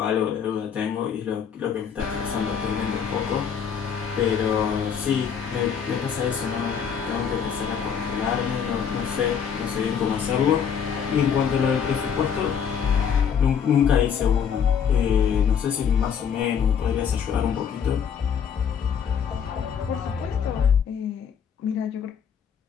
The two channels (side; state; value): right; quieter; 7.4 dB